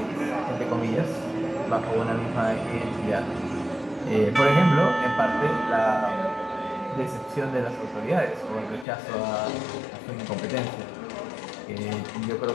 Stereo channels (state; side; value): drops out; right; at 8.8 s